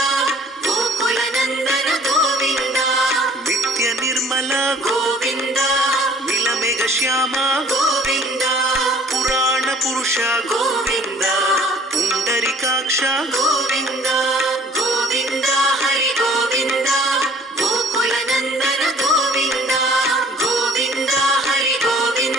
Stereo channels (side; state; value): both; normal; correlation 0.53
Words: ಗೋಕುಲ ನಂದನ ಗೋವಿಂದ, ನಿತ್ಯ ನಿರ್ಮಲ ಗೋವಿಂದ, ನೀಲಮೇಘ ಶ್ಯಾಮ ಗೋವಿಂದ, ಪುರಾಣ ಪುರುಷ ಗೋವಿಂದ, ಪುಂಡರಿಕಾಕ್ಷ ಗೋವಿಂದ, ಗೋವಿಂದ ಹರಿ ಗೋವಿಂದ, ಗೋಕುಲ ನಂದನ ಗೋವಿಂದ, ಗೋವಿಂದ ಹರಿ